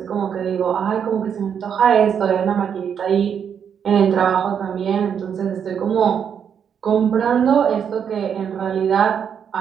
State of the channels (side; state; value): left; quieter; 7.8 dB